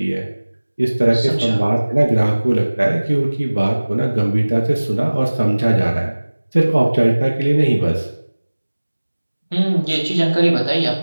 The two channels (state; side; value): inverted; both; correlation -1.00